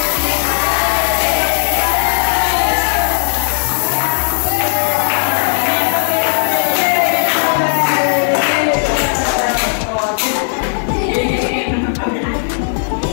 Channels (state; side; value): silent; right; digital silence